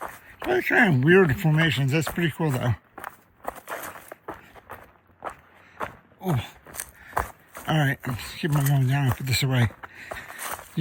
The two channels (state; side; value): identical; both; correlation 1.00